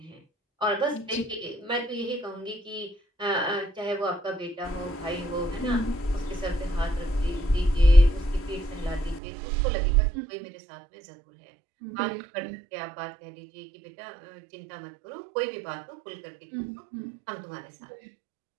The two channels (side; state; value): left; drops out; at 9.2 s